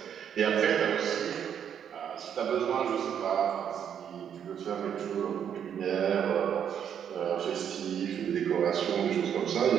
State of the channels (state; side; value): quieter; left; 8.6 dB